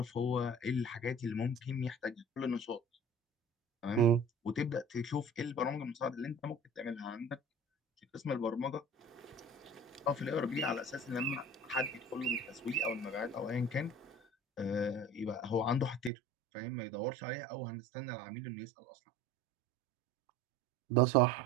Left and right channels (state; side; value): drops out; left; at 16.1 s